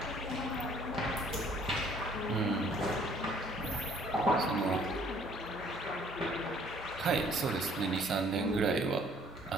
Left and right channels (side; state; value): both; normal; correlation 0.59